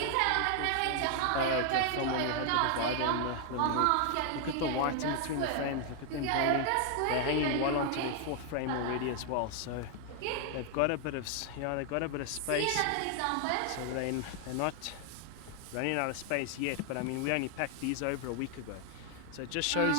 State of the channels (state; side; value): different; both; correlation 0.00